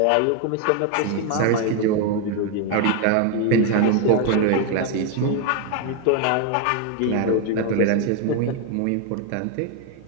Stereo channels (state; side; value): different; both; correlation 0.01